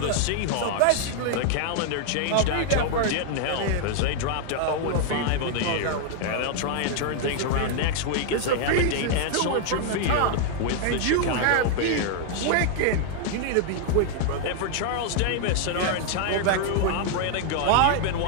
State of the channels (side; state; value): both; different; correlation 0.00